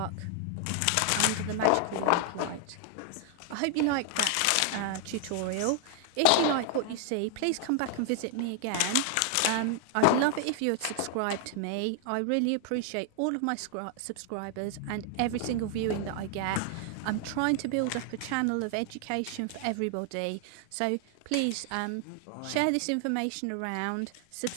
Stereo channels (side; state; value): both; different; correlation 0.00